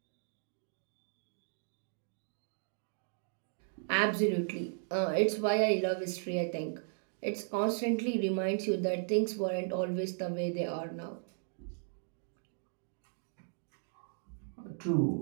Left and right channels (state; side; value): silent; left; digital silence